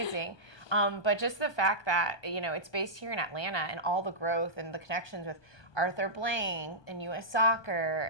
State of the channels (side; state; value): right; late; 1.2 ms